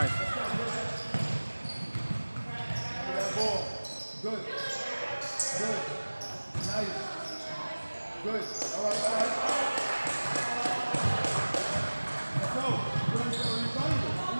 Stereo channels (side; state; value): both; inverted; correlation -1.00